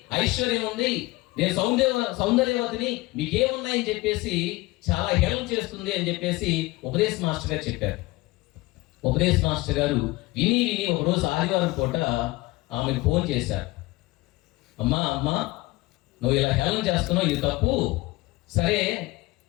ఐశ్వర్యం ఉంది, నేను సౌందర్యవతిని, మీకేమున్నాయని చెప్పేసి చాలా హేళన చేస్తుంది అని చెప్పేసి ఉపదేశ మాస్టర్ గారు చెప్పారు. ఉపదేశ మాస్టర్ గారు విని ఒకరోజు ఆదివారం పూట ఆమెకు ఫోన్ చేశారు, అమ్మా నువ్వు ఇలా హేళన చేస్తున్నావు, ఇది తప్పు, సరే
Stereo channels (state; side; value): quieter; right; 21.0 dB